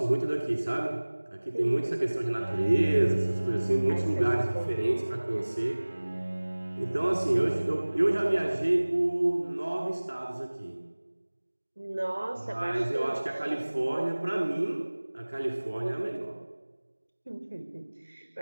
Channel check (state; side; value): inverted; both; correlation -1.00